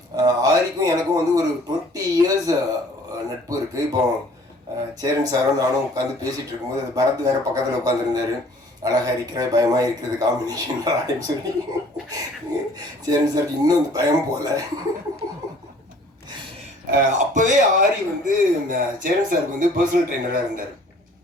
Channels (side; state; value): both; normal; correlation 0.54